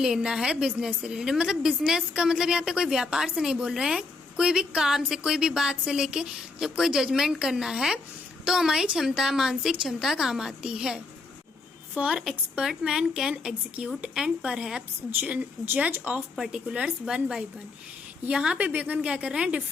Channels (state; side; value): quieter; right; 3.8 dB